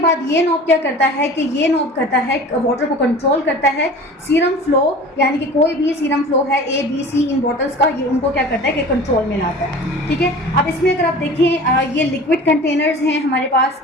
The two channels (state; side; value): normal; both; correlation 0.40